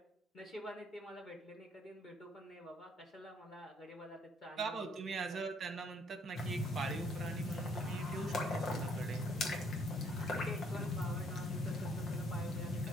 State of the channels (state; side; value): normal; both; correlation 0.65